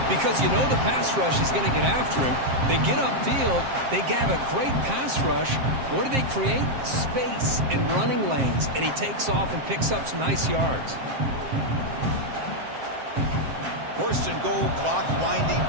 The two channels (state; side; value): late; left; 7.6 ms